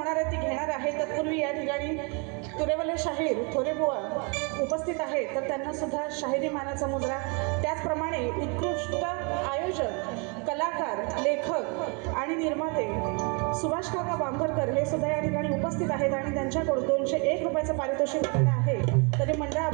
आहे ती घेणार आहे। तत्पूर्वी या ठिकाणी तुरेवले शाहीर थोरे बुवा उपस्थित आहेत, तर त्यांना सुद्धा शाहिरी मानाचा मुजरा। त्याचप्रमाणे उत्कृष्ट आयोजक, कलाकार, लेखक आणि निर्माते सुभाष काका बांभरकर हे सुद्धा या ठिकाणी उपस्थित आहेत आणि त्यांच्याकडून 201 रुपयाचं पारितोषिक मिळालं आहे। तरी मंडळ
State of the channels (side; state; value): left; quieter; 34.1 dB